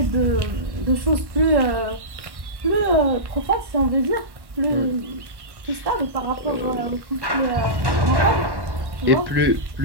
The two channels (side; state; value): left; late; 1.1 ms